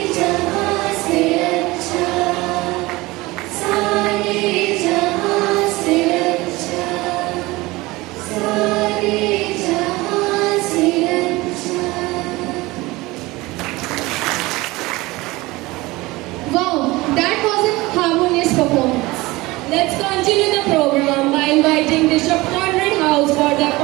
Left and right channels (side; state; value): left; quieter; 21.0 dB